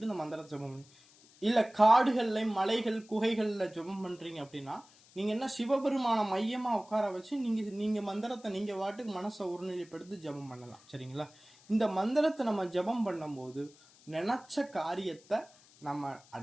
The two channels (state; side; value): noise; left; hiss, 26 dB below the sound